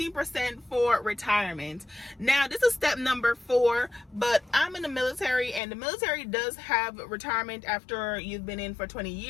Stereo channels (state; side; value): drops out; right; at 5.6 s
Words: for retirement. Now, this is step number 4, but I'm in the military, and the military does have retirement after you've been in for 20